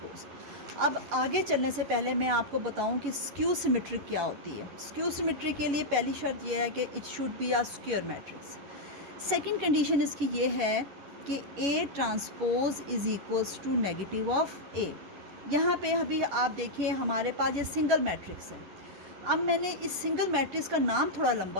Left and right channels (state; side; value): late; left; 11 ms